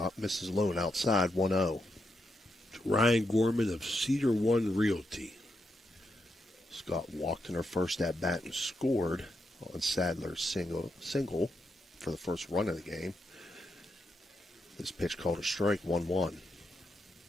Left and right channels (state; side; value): normal; both; correlation 0.83